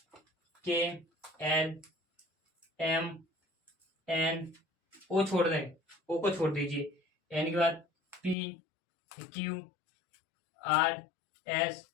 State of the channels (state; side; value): drops out; right; at 8.3 s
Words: के, एल, एम, एन, ओ छोड़ दें, ओ को छोड़ दीजिए, एन के बाद P, Q, R, S,